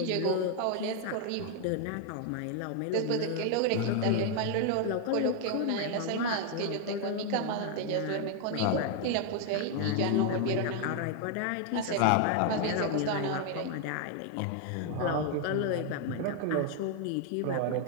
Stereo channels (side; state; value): both; different; correlation 0.00